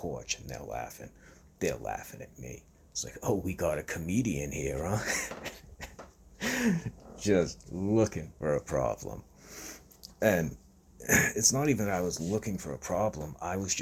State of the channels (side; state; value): both; identical; correlation 1.00